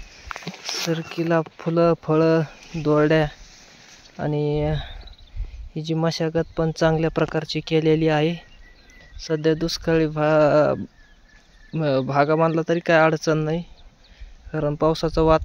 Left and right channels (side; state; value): both; identical; correlation 1.00